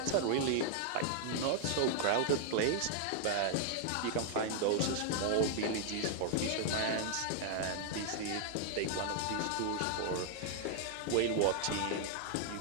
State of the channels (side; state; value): both; different; correlation -0.01